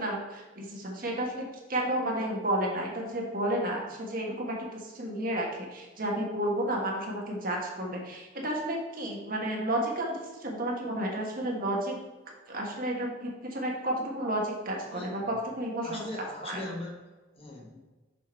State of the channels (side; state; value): both; normal; correlation 0.14